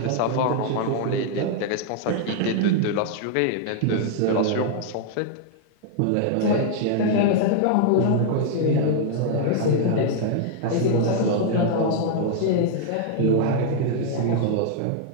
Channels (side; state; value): both; different; correlation 0.00